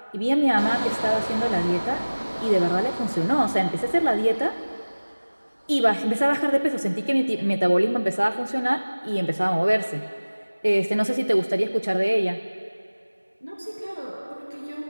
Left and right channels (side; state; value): both; inverted; correlation -1.00